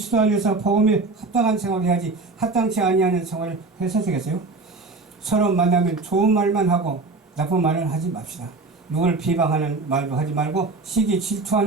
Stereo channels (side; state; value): left; quieter; 3.7 dB